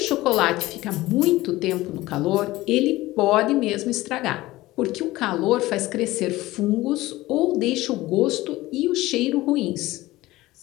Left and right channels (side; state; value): right; quieter; 18.1 dB